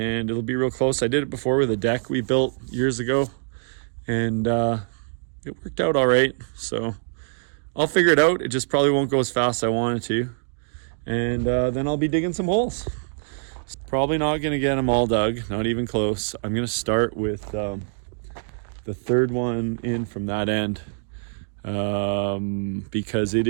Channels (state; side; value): silent; left; digital silence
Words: it'll be real close. I did it before with a deck we built years ago, and it worked out all right. So I'll figure it out. It just probably won't go as fast as I wanted to, and then I'll be digging some holes. Probably not going to get them all dug, not even close. I'm going to start with the third one in from that end, because it